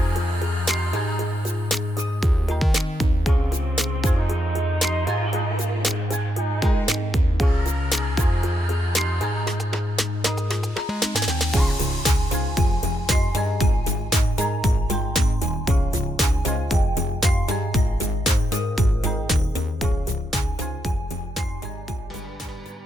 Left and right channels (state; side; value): normal; both; correlation 0.81